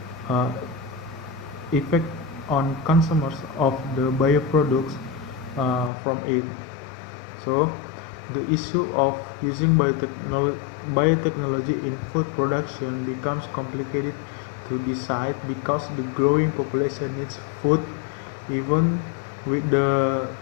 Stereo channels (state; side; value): drops out; right; at 5.9 s